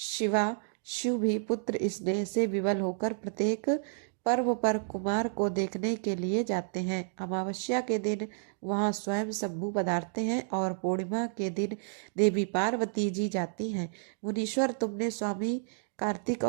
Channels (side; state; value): left; silent; digital silence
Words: भी पुत्र स्नेह से विवल होकर प्रत्येक पर्व पर कुमार को देखने के लिए जाते हैं। अमावस्या के दिन वहां स्वयं शंभु पधारते हैं और पूर्णिमा के दिन देवी पार्वती जी जाती हैं। मुनीश्वर, तुमने स्वामी कार्तिक